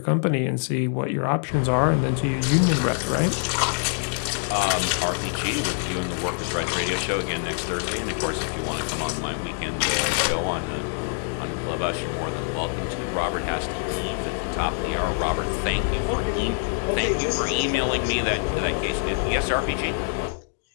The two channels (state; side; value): silent; right; 58 dB below the other